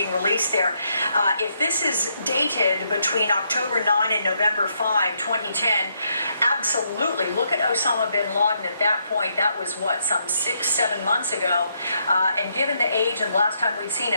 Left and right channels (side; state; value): both; inverted; correlation -0.76